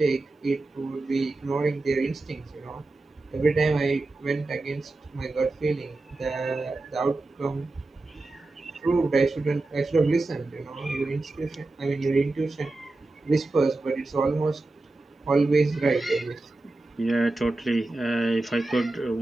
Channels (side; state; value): left; quieter; 3.1 dB